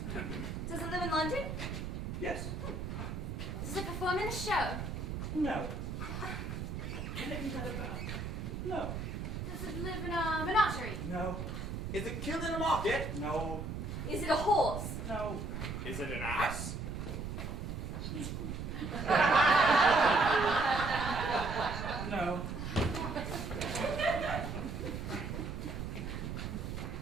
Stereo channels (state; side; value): noise; right; rumble, 5 dB below the sound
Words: Does it live in London? Yes. Does it perform in a show? No. Anything that about? No. Does it live in a menagerie? No. Is it killed in a market? No. Is it a horse? No. Is it an ass? No.